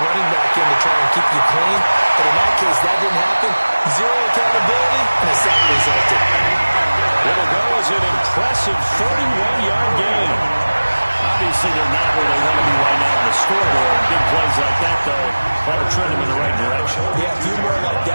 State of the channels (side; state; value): both; inverted; correlation -1.00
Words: running back in to try and keep you clean. But in that case, that didn't happen. Zero accountability, and a sack resulted. It'll go as an impressive 31-yard gain. Obviously, they're not where they want to be right now on the scoreboard. Big plays like that, though, ought to trend them in the right direction. Yeah, a few more like